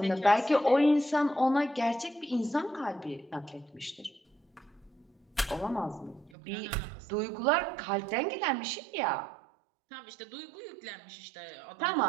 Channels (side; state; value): left; drops out; at 6.3 s